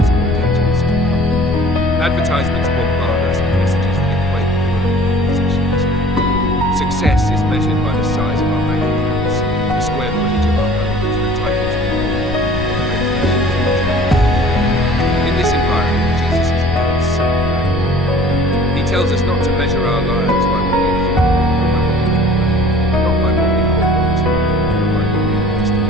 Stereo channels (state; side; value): noise; left; rumble, 8 dB below the sound